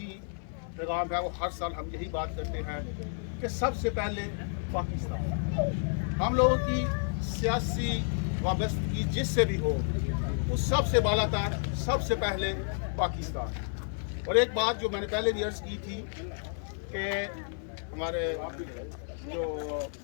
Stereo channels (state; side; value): silent; right; 57 dB below the other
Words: पैगाम है, वो हर साल हम यही बात करते हैं कि सबसे पहले पाकिस्तान। हम लोगों की सियासी वाबस्तगी जिससे भी हो, उस सबसे बालातर सबसे पहले पाकिस्तान। और एक बात जो मैंने पहले भी अर्ज़ की थी कि हमारे जो